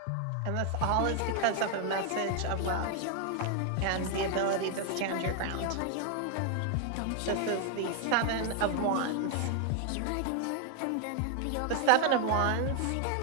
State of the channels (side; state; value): both; different; correlation 0.00